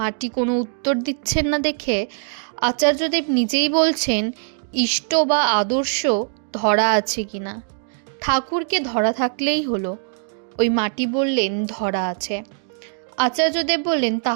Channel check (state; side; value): silent; left; digital silence